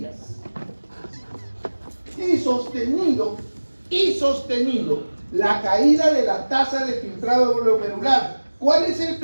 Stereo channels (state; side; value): inverted; both; correlation -1.00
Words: Y sostenido, la caída de la tasa de filtrado glomerular. ¿Cuál es el